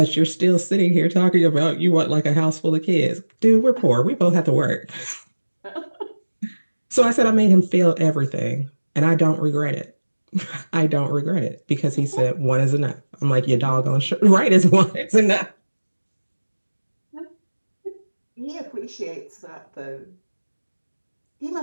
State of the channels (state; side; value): inverted; both; correlation -1.00